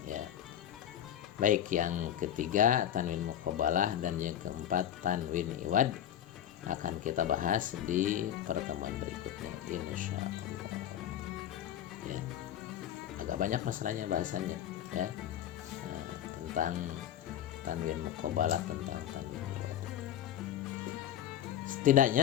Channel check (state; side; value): quieter; right; 10.9 dB